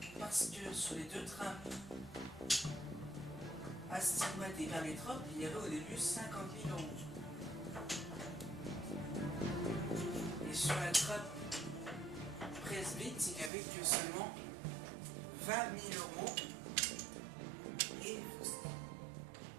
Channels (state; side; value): drops out; left; at 13.5 s